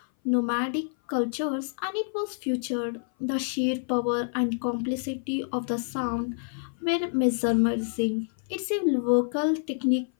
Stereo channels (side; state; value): right; silent; 57 dB below the other